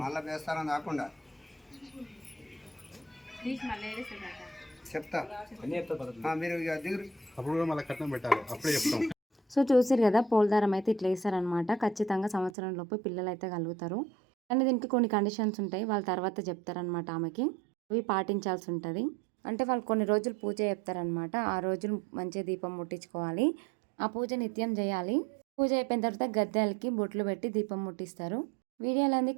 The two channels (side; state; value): left; drops out; at 12.5 s